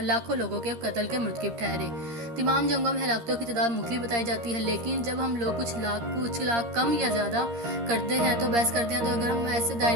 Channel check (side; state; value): left; late; 13 ms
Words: لاکھوں لوگوں کے قتل کے مرتکب ٹھہرے۔ تمام جنگوں میں ہلاکتوں کی تعداد مختلف بتائی جاتی ہے، لیکن جب ہم لوگ کچھ لاکھ کم یا زیادہ کرتے ہیں تو بحث کرتے ہیں، تو اگر ہم ایسے